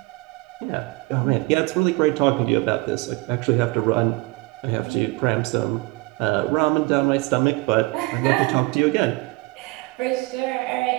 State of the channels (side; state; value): left; quieter; 23.4 dB